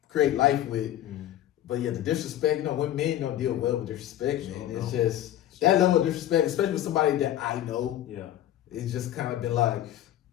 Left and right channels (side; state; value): right; quieter; 12.5 dB